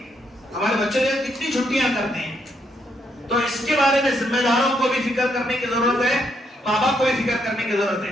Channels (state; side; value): normal; both; correlation 0.76